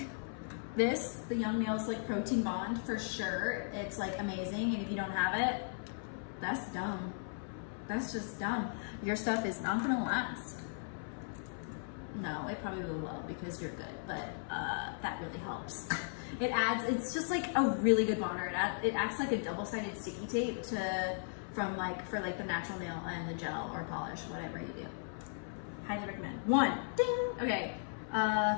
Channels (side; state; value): right; silent; 53 dB below the other